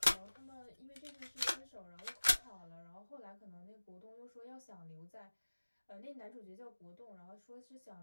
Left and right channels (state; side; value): inverted; both; correlation -1.00